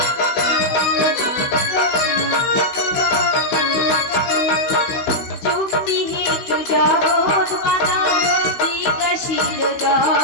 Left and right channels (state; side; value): late; right; 16 ms